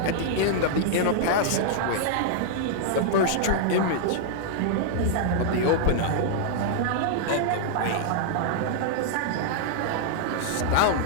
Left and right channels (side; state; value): both; different; correlation -0.01